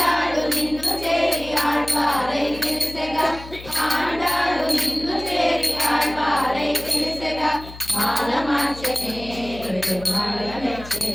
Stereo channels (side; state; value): left; noise; hum, 15 dB below the sound